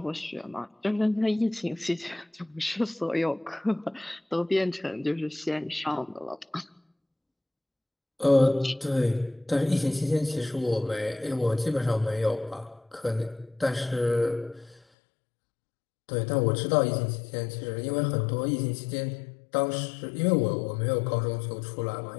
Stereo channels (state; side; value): drops out; right; at 14.8 s